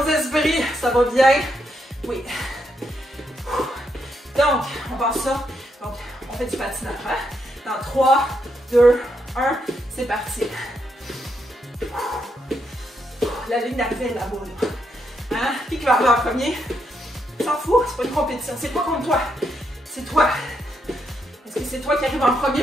esprits. Ça va bien. Oui. Donc, on passe ça. Donc, on fait du patinage. Hein? Dans 3, 2, 1, c'est parti. La ligne d'arrivée est là-bas. Là. Hein? Qui va arriver en premier? S'en fout, c'est pas une compétition. C'est pas contre toi. C'est toi. Est-ce que c'est toi qui arrive en premier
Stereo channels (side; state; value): both; normal; correlation 0.79